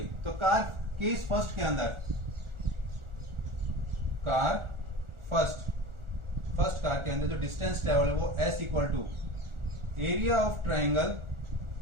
तो कार केस फर्स्ट के अंदर, कार फर्स्ट कार के अंदर जो डिस्टेंस ट्रेवल है वो S equal to area of triangle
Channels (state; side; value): late; left; 1.4 ms